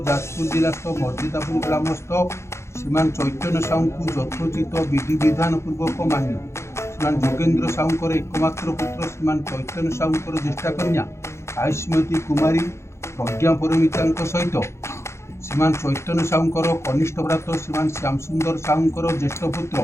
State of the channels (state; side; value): late; right; 0.13 ms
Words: जाजपुर जिलास्थ मर्यादापुर ग्रामस्थ श्रीमान चैतन्य साहू को यथोचित विधि विधान पूर्वक मान्य श्रीमान जोगेन्द्र साहूंकर एकमात्र पुत्र श्रीमान चैतन्य साहूंकर ज्येष्ठा कन्या आयुष्मती कुमारी प्रज्ञा परमिता सहित श्रीमान चैतन्य साहूंकर कनिष्ठ भ्रात श्रीमान श्यामसुंदर साहूंकर ज्येष्ठ पुत्र